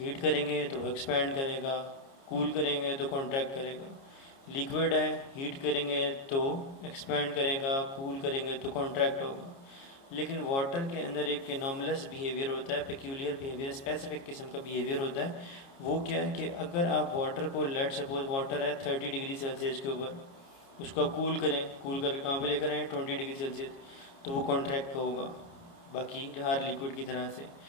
करेंगे तो वो एक्सपैंड करेगा, कूल करेंगे तो कॉन्ट्रैक्ट करेगा। लिक्विड है, हीट करेंगे तो एक्सपैंड करेगा, कूल करेंगे तो कॉन्ट्रैक्ट होगा। लेकिन वाटर के अंदर एक एनॉमलस बिहेवियर होता है, पेक्यूलियर बिहेवियर, स्पेसिफिक किस्म का बिहेवियर होता है। वो क्या है कि अगर आप वाटर को, लेट सपोज वाटर है 30 डिग्री सेल्सियस के ऊपर, उसको कूल करें, कूल करके कहाँ पे लेकर आए 20 डिग्री सेल्सियस, तो वो कॉन्ट्रैक्ट होगा बाकी हर लिक्विड की तरह से।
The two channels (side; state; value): right; late; 29 ms